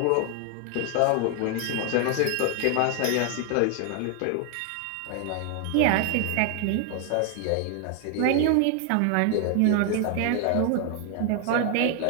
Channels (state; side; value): different; both; correlation 0.00